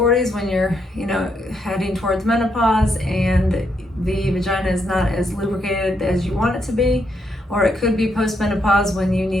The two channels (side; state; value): both; normal; correlation 0.77